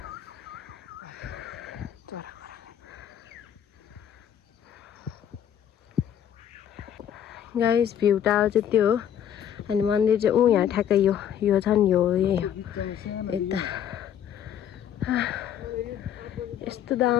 guys view tower चाहिँ त्यो हो अनि मन्दिर चाहिँ यहाँ ठ्याक्कै यो छ नि यो यही हो यता यस्तो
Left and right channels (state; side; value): quieter; right; 9.7 dB